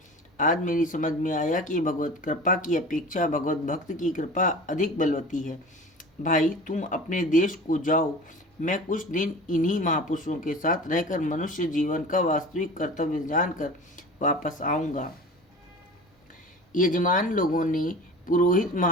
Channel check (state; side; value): normal; both; correlation 0.37